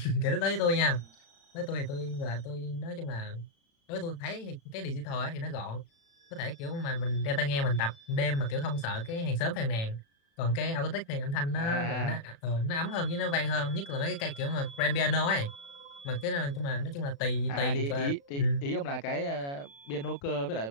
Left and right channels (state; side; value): late; right; 36 ms